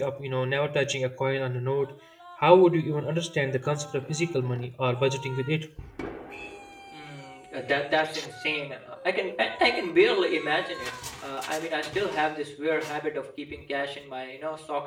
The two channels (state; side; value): identical; both; correlation 1.00